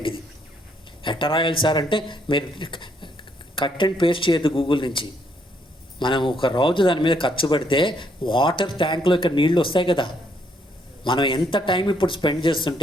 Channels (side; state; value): both; normal; correlation 0.71